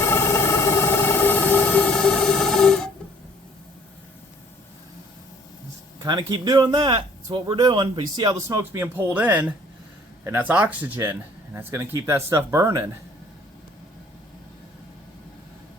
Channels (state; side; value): normal; both; correlation 0.57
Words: Kind of keep doing that. That's what we're doing. But you see how the smoke's being pulled in, and that's oxygen, and that's going to keep that stuff burning.